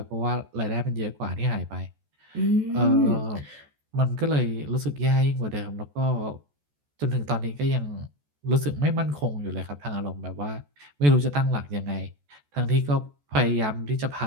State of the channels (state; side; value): late; left; 14 ms